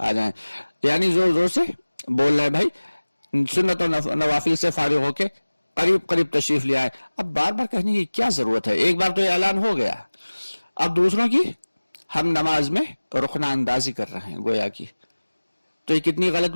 आ जाएं। यानी जोर से बोल रहे हैं भाई सुन्नत और नवाफिल से फारिग होके करीब तशरीफ ले आए। अब बार बार कहने की क्या जरूरत है, एक बार तो ऐलान हो गया, अब दूसरों की हम नमाज में रुखना अंदाजी कर रहे हैं गोया की। तो ये कितनी गलत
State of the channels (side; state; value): both; inverted; correlation -1.00